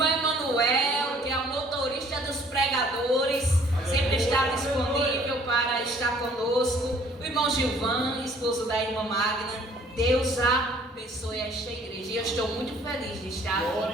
Emanuel, que é o motorista dos pregadores, sempre está disponível para estar conosco. O irmão Gilvan, esposo da irmã Magna. Deus abençoe esta igreja. E eu estou muito feliz de estar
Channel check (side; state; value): both; normal; correlation 0.58